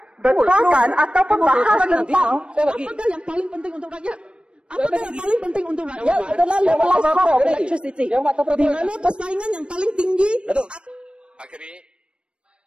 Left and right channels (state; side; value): late; left; 0.057 ms